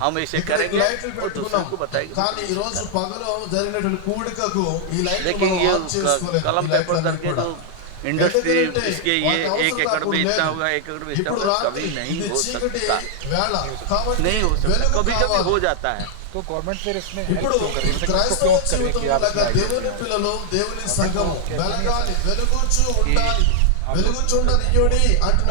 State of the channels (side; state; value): both; different; correlation 0.00